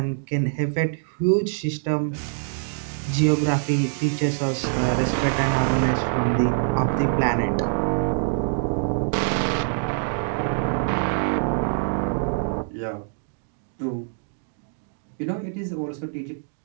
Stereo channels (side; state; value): left; silent; digital silence